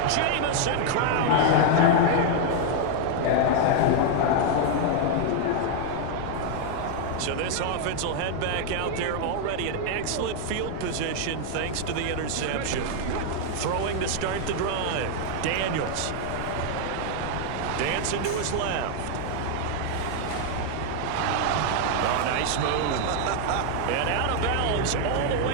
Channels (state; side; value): different; both; correlation 0.00